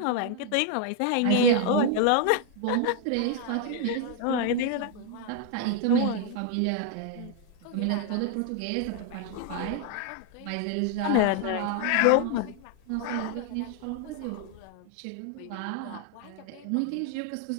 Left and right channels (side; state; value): both; different; correlation 0.00